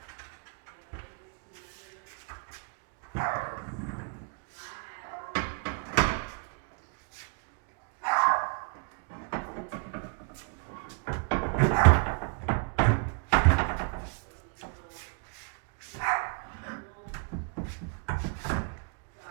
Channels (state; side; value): quieter; left; 39.9 dB